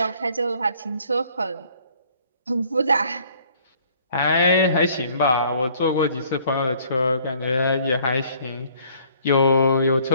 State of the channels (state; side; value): inverted; both; correlation -0.58